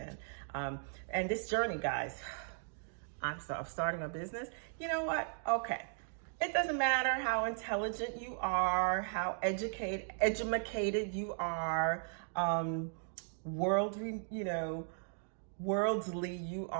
And this journey, guys, I'm starting a business. You know what? Okay. It doesn't matter how intelligent you are, how educated you are, worldly you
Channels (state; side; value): silent; left; digital silence